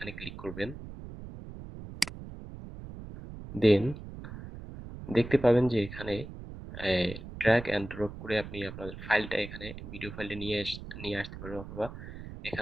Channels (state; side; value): noise; right; rumble, 12 dB below the sound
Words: ক্লিক করবেন। দেন দেখতে পাবেন যে এখানে ড্র্যাগ অ্যান্ড ড্রপ করে আপনি আপনার ফাইলটা এখানে ভিডিও ফাইলটা নিয়ে আসতে পারবেন, অথবা